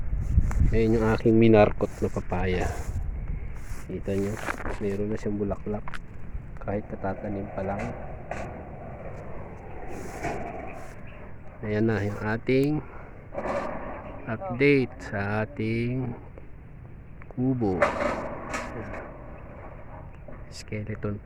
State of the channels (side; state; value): both; identical; correlation 1.00